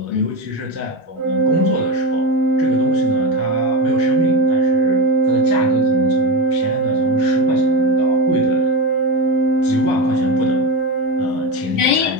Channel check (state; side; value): normal; both; correlation 0.18